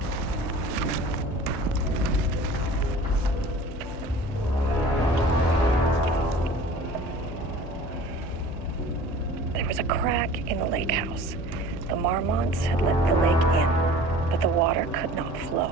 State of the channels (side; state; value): both; normal; correlation 0.43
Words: There was a crack in the lake house. The Marmonts had let the lake in, but the water could not flow.